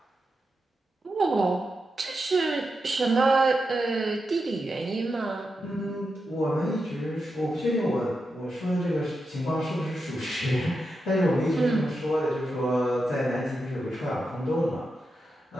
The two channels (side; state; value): both; normal; correlation 0.87